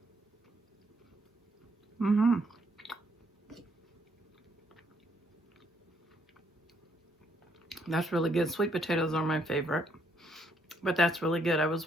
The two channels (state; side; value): normal; both; correlation 0.71